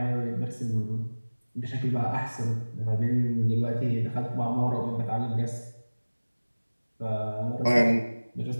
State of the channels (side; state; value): both; inverted; correlation -1.00